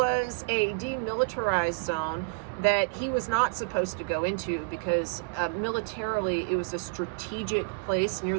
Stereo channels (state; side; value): quieter; left; 34.6 dB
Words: a demilitarized zone that he was not supposed to go into because militarily it was a strategic place near